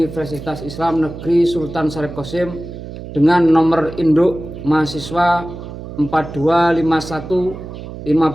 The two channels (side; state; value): right; noise; hum, 11 dB below the sound